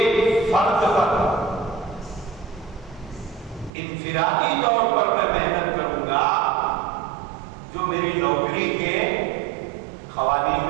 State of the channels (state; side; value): drops out; left; at 3.7 s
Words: फर्द पर इनफिरादी तौर पर मैं मेहनत करूंगा जो मेरी नौकरी के क़वानीन